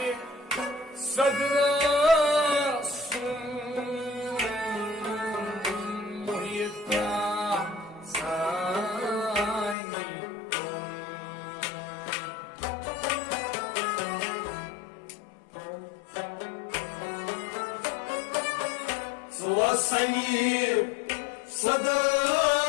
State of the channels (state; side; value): drops out; right; at 9.8 s